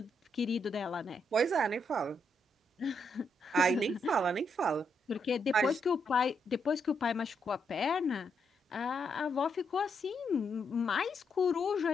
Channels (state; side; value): normal; both; correlation 0.78